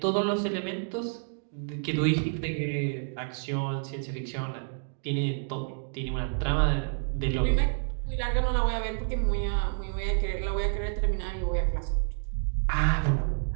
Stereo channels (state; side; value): silent; left; digital silence